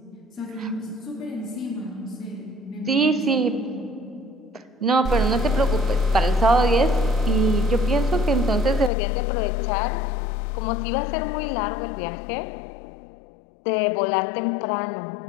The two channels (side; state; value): right; drops out; at 8.9 s